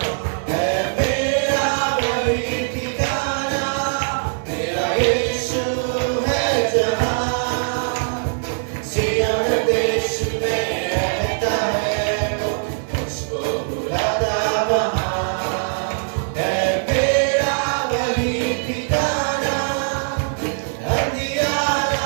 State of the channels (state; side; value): silent; left; 60 dB below the other